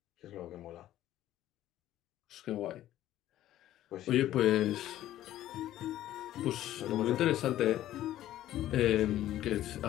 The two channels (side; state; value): right; quieter; 13.4 dB